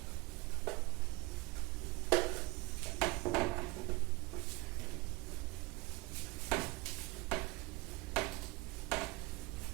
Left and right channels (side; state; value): left; quieter; 23.8 dB